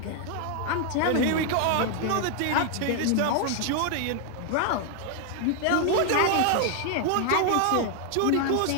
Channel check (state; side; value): different; both; correlation 0.00